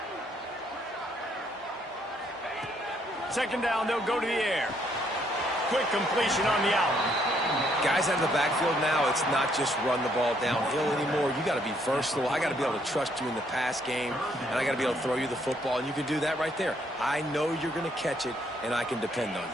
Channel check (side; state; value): both; normal; correlation 0.69